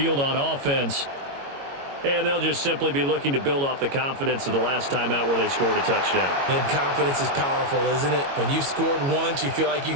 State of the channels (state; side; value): late; left; 22 ms